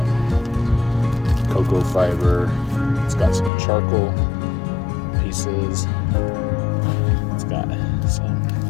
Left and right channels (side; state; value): right; drops out; at 3.5 s